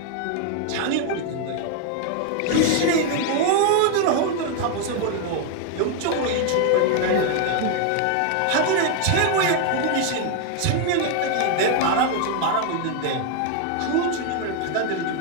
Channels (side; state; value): both; different; correlation 0.00